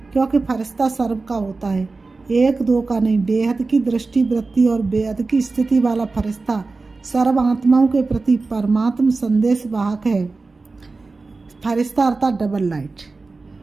क्योंकि फरिश्ता सर्व का होता है, एक दो का नहीं। बेहद की दृष्टि वृत्ति और बेहद की स्थिति वाला फरिश्ता सर्व आत्माओं के प्रति परमात्म संदेश वाहक है। फरिश्ता अर्थात डबल लाइट।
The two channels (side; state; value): left; quieter; 3.8 dB